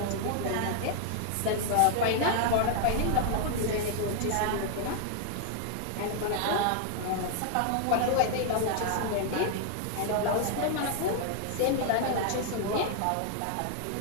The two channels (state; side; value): different; both; correlation 0.00